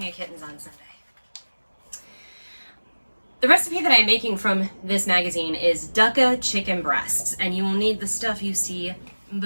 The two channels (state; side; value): inverted; both; correlation -1.00